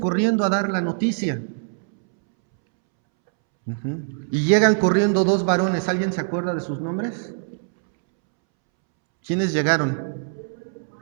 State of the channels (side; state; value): left; silent; 64 dB below the other